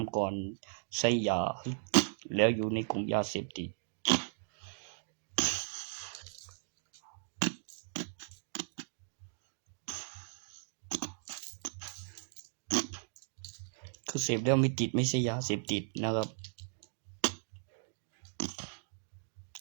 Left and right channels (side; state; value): left; silent; digital silence